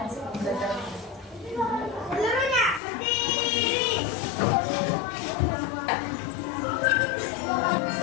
pembelajaran. Seluruhnya berdiri.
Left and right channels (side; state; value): right; drops out; at 2.8 s